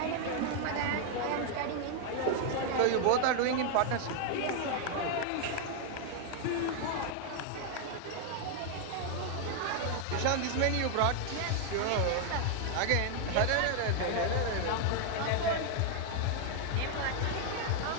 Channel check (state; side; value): different; both; correlation 0.00